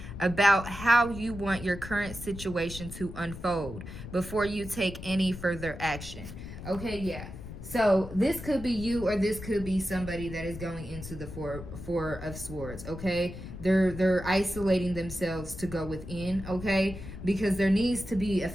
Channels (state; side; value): noise; left; rumble, 11 dB below the sound